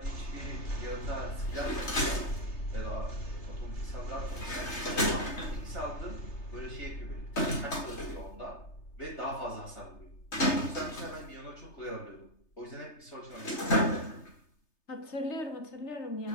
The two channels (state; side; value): late; right; 3.3 ms